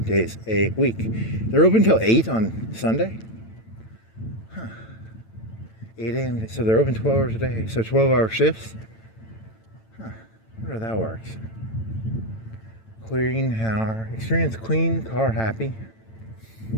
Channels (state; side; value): late; right; 9.0 ms